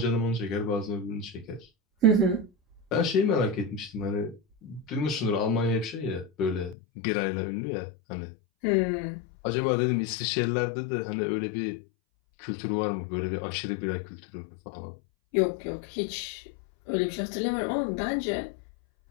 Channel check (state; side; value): drops out; right; at 6.8 s